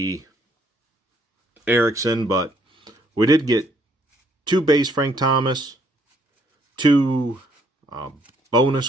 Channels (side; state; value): both; normal; correlation 0.68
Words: Erickson, but we did get 2 base Frank Thomas, 2 bonus